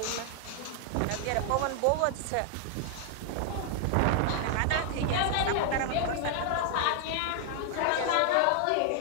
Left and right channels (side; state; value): both; different; correlation 0.00